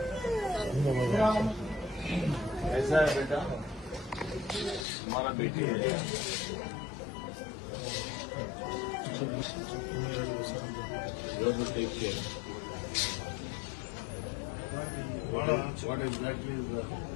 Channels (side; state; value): right; drops out; at 4.9 s